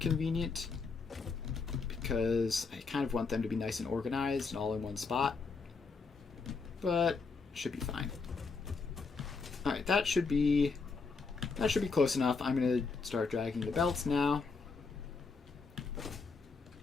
because I kind of want them to be nice and organized and all in one spot. But should be fine. Alright, that should be close enough. I'm going to start dragging the belts now.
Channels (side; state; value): right; quieter; 4.5 dB